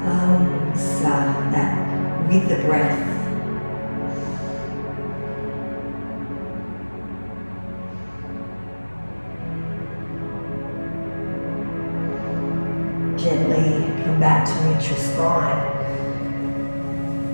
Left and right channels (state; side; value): inverted; both; correlation -1.00